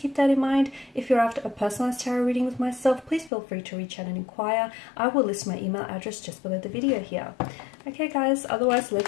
keep that in mind. If you're after a personalized tarot reading with myself, please feel free to reach out and inquire. I will list my email address just below the video here. Okay, guys, otherwise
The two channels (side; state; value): right; drops out; at 3.3 s